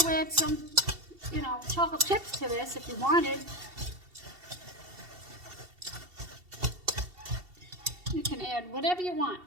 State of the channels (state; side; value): late; left; 2.7 ms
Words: add some, chocolate chips to this if you wanted. You can add whatever you want.